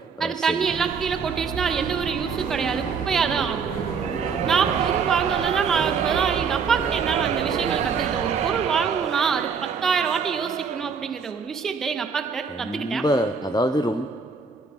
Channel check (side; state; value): left; quieter; 5.7 dB